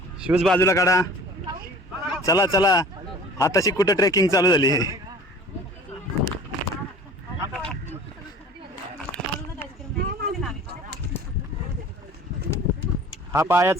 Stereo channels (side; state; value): both; normal; correlation 0.45